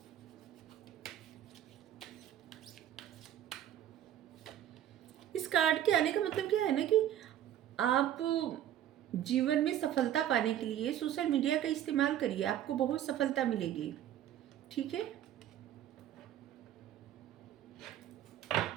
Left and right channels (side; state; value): left; quieter; 11.4 dB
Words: इस कार्ड के आने का मतलब क्या है ना कि आप जीवन में सफलता पाने के लिए सोशल मीडिया का इस्तेमाल करिए, आपको बहुत सफलता मिलेगी, ठीक है।